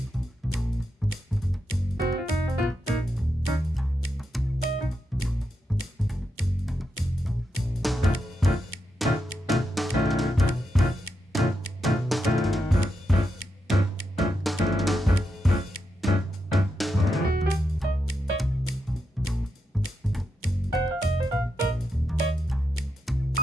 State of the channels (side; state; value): both; normal; correlation 0.85